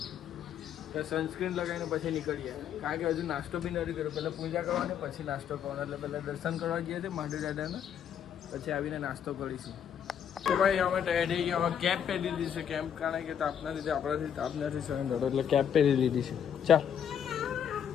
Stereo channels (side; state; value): right; quieter; 8.7 dB